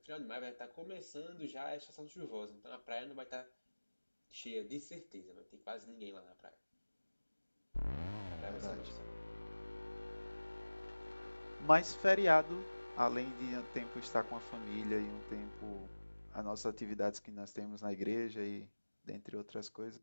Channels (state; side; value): inverted; both; correlation -1.00